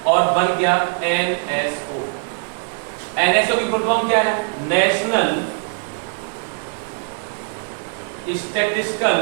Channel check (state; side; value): silent; left; 63 dB below the other